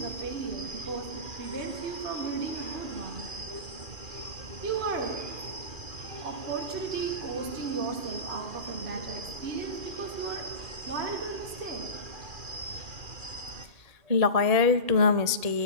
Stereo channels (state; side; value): late; left; 2.4 ms